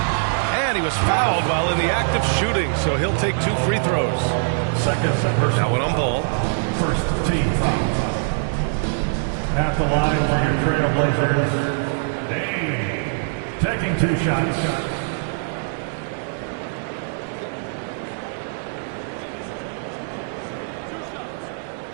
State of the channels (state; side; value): silent; left; digital silence